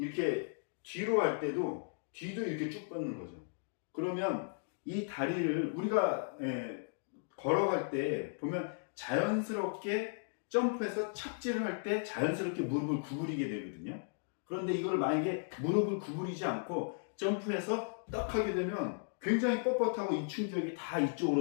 뒤로 할 때도 뒤도 이렇게 쭉 뻗는 거죠. 그러면 이 다리를 우리가 걸어갈 때 보면 자연스럽게 점프해서 착지를 할 때 자연스럽게 무릎을 구부리게 되거든요. 그런데 이걸 만약에 무릎을 구부리지 않고 점프해서 딱 하게 되면 굉장히 뻣뻣하고 이 충격이 다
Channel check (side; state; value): right; silent; digital silence